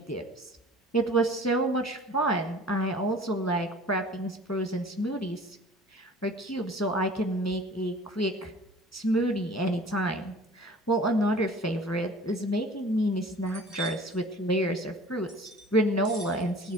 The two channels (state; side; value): normal; both; correlation 0.45